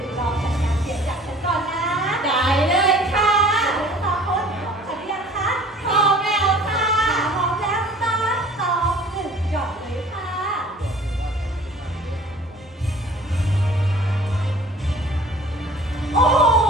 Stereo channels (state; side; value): normal; both; correlation 0.49